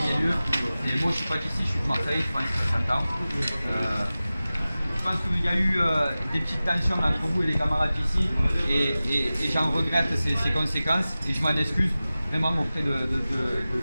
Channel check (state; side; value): inverted; both; correlation -0.96